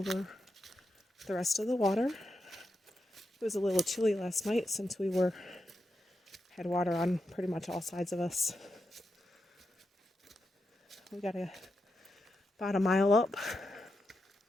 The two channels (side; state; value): both; normal; correlation 0.87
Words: the rest of the water. It was a little chilly last night since we had water on pretty much all sides of us. We got about a mile up,